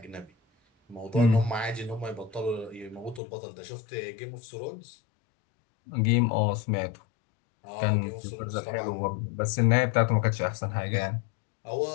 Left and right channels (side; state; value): right; drops out; at 3.2 s